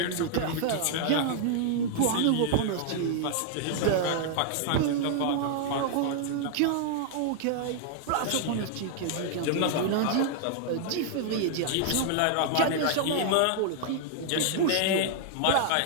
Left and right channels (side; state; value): both; different; correlation -0.01